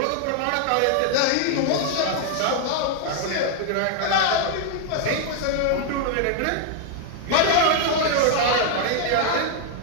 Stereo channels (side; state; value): both; different; correlation 0.00